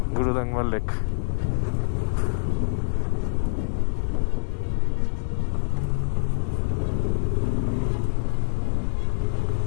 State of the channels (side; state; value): right; silent; digital silence